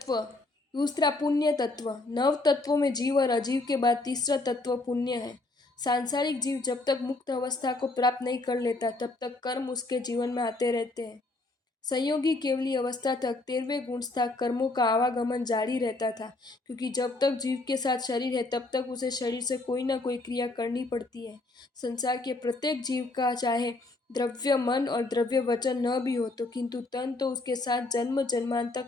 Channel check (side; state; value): right; quieter; 3.0 dB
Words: तत्व। दूसरा पुण्य तत्व। नव तत्वों में जीव और अजीव के बाद तीसरा तत्व पुण्य है। सांसारिक जीव जब तक मुक्त अवस्था को प्राप्त नहीं कर लेता तब तक कर्म उसके जीवन में आते रहते हैं। संयोगी केवली अवस्था तक 13वें गुणस्था कर्मों का आवागमन जारी रहता था, क्योंकि जब तक जीव के साथ शरीर है तब तक उसे शरीर से कोई ना कोई क्रिया करनी पड़ती है। संसार के प्रत्येक जीव का चाहे द्रव्य मन और द्रव्य वचन न भी हो तो किंतु तन तो उसके साथ जन्म जन्मांतर